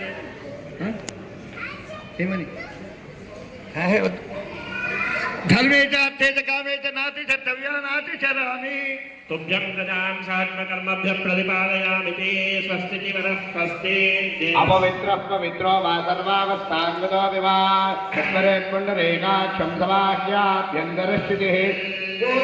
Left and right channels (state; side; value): identical; both; correlation 1.00